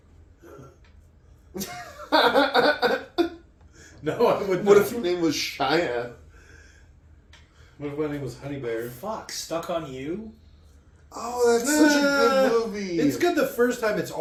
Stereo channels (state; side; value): identical; both; correlation 1.00